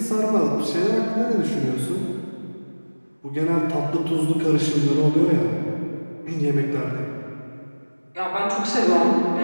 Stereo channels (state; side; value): inverted; both; correlation -1.00